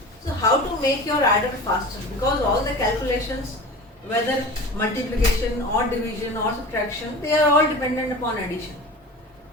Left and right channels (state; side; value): normal; both; correlation 0.35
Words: So how to make your adder faster? Because all the calculations, whether multiplication or division or subtraction, they are all dependent upon addition.